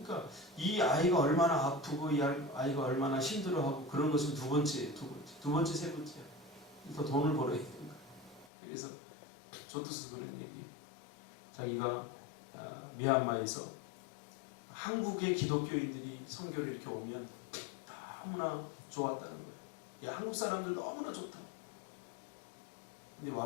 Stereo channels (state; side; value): drops out; right; at 8.5 s